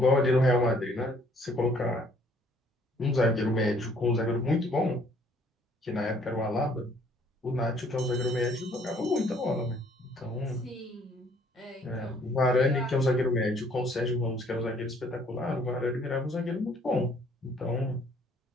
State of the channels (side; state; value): both; normal; correlation 0.61